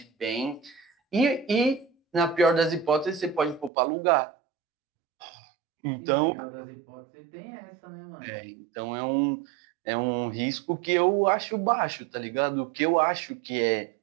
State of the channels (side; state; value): left; drops out; at 3.7 s